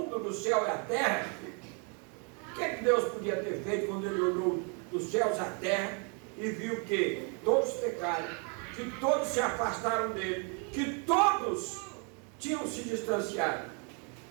do céu e a terra. O que Deus podia ter feito quando ele olhou dos céus à terra e viu que todos pecaram, que todos se afastaram dele, que todos tinham se distanciado?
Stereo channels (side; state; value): left; quieter; 37.1 dB